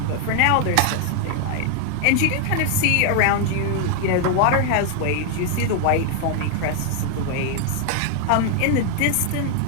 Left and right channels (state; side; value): different; both; correlation 0.00